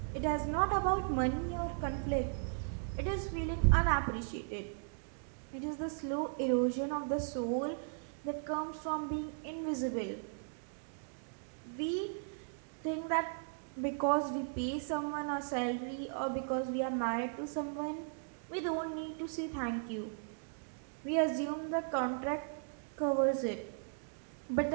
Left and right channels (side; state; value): left; silent; digital silence